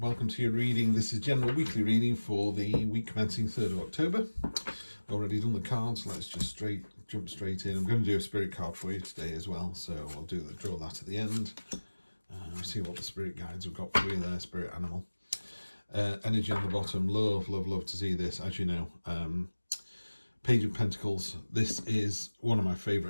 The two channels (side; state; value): both; inverted; correlation -1.00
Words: to your reading. This is general weekly reading for the week commencing 3rd of October. Already done the cards, let's just jump straight in. I'm going to do a spirit card for you today as well, so I'll draw that at the end. See what the spirit guides have got for you there, spirit animal. Energy on the bottom, love to see this, as you know. Page of Pentacles, this is one of my